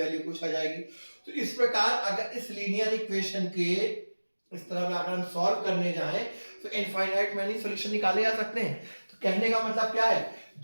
कुछ हो जाएगी। तो इस प्रकार अगर इस लीनियर इक्वेशन के इस तरह अगर हम सॉल्व करने जाएं तो इनफाइनाइट मैनी सॉल्यूशन निकाले जा सकते हैं। तो कहने का मतलब क्या है,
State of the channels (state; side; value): inverted; both; correlation -1.00